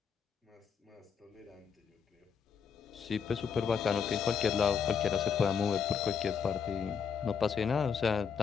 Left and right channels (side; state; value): right; quieter; 6.7 dB